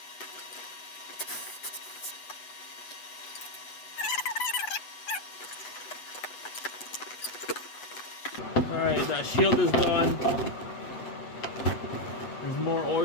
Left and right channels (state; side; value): late; right; 8.0 ms